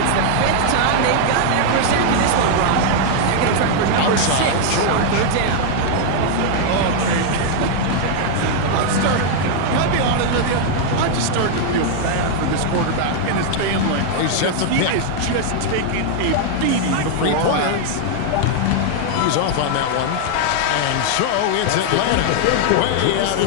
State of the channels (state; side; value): different; both; correlation 0.00